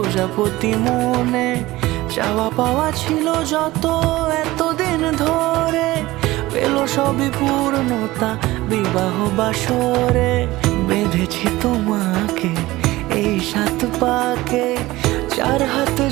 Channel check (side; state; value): left; quieter; 18.4 dB